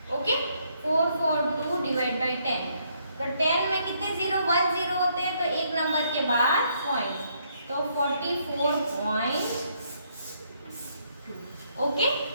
Okay 442 divided by 10 तो 10 में कितने 0 1 0 होते हैं तो एक number के बाद पॉइंट तो 44.2. ओके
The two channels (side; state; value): both; inverted; correlation -0.72